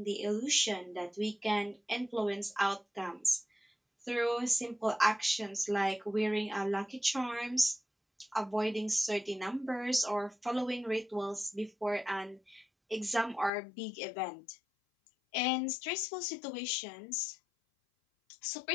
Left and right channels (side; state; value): right; drops out; at 13.5 s